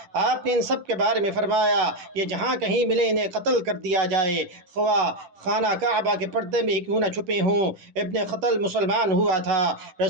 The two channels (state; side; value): late; left; 10 ms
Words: آپ نے ان سب کے بارے میں فرمایا یہ جہاں کہیں ملے انہیں قتل کر دیا جائے، خواہ خانہ کعبہ کے پردے میں کیوں نہ چھپے ہوں۔ ابن خطل مسلمان ہوا تھا۔